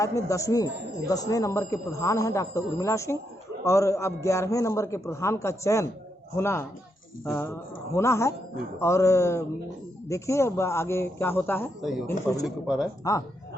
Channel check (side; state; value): both; normal; correlation 0.80